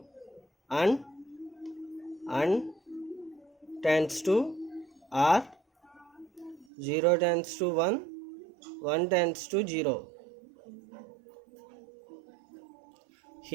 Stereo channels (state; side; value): drops out; left; at 6.7 s